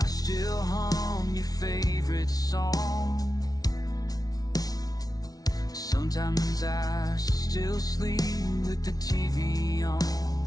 still hum your favorite song. Sometimes I still sleep with the TV on.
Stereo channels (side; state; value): right; late; 0.18 ms